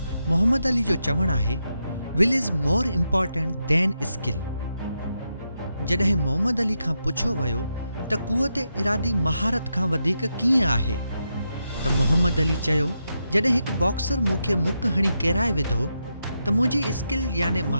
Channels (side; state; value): both; inverted; correlation -0.85